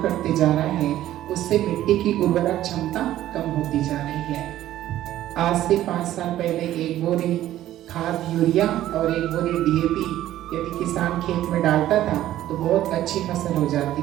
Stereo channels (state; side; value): quieter; left; 13.4 dB